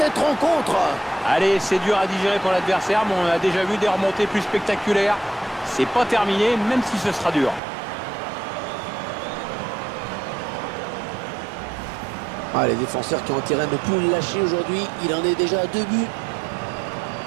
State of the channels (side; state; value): left; drops out; at 7.6 s